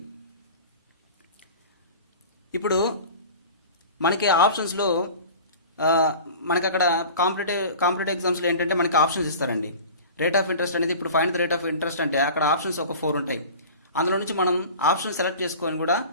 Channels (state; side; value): inverted; both; correlation -0.38